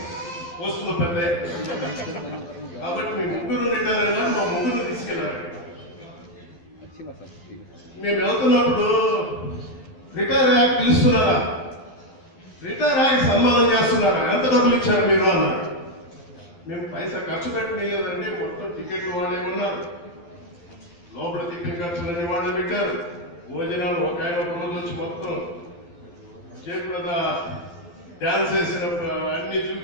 పోస్టులో పెద్ద. కాబట్టి మీ ముగ్గురు రిటైర్ అయినా మా ముగ్గురు తీసుకెళ్లారు. మేము వెళ్తున్నప్పుడు రిటైర్ అయ్యాక పిలుస్తున్నారా, రిటైర్ అయ్యాక సన్మానం చేస్తున్నారా, ఎంత డబ్బులు ఇచ్చారు మీరు అన్నారు. మేము పైసా ఖర్చు పెట్టలేదండి, మొత్తం టికెట్లు వాళ్ళే ఉన్నారు, లోపల టికెట్ ఖర్చులన్నీ వాళ్ళే పెట్టారు, భోజనాలు ఒక ఆయన ఒక రోజు వచ్చి మొత్తం జయప్రద డాన్స్ వేసిన అన్ని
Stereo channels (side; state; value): right; late; 12 ms